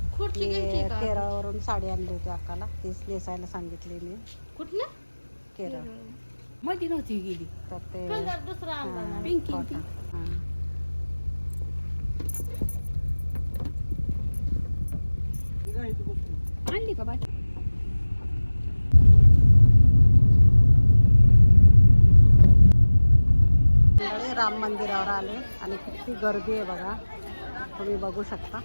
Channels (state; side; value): inverted; both; correlation -1.00